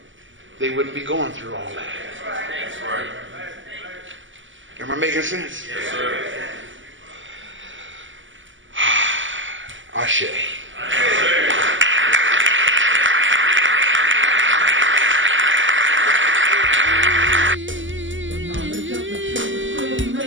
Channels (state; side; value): late; left; 0.55 ms